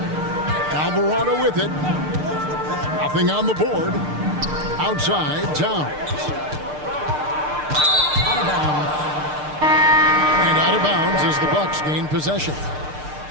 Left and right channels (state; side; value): late; left; 6.6 ms